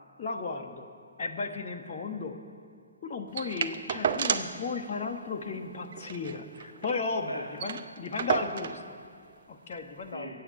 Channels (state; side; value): inverted; both; correlation -0.51